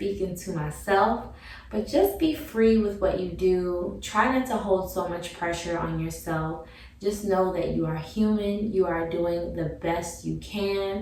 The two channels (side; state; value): both; identical; correlation 1.00